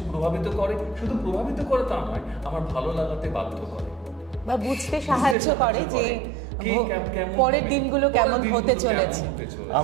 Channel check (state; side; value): drops out; left; at 5.4 s